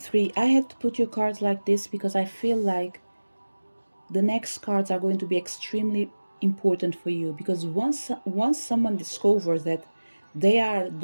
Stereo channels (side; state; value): both; inverted; correlation -1.00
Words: 3, I had to put your cards like this because I feel like the next cards are going to be extremely important for you, because once someone discovers that they are